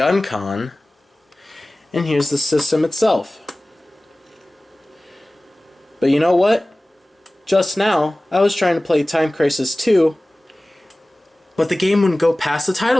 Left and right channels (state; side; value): normal; both; correlation 0.98